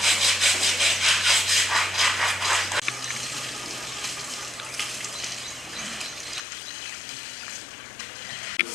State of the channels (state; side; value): drops out; right; at 6.4 s